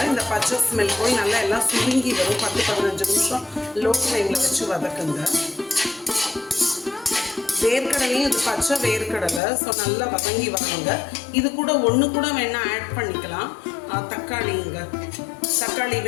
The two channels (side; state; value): right; drops out; at 9.4 s